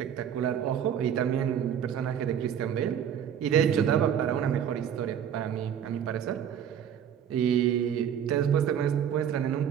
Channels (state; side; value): quieter; left; 9.0 dB